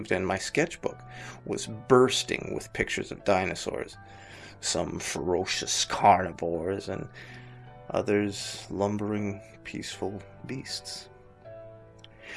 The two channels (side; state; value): both; identical; correlation 1.00